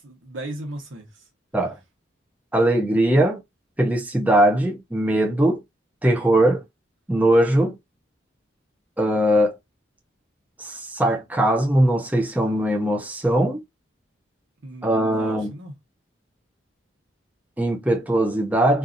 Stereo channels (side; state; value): both; normal; correlation 0.79